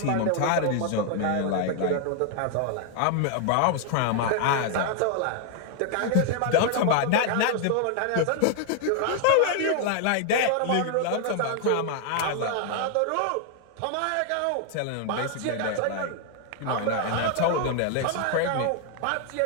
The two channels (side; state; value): both; different; correlation 0.00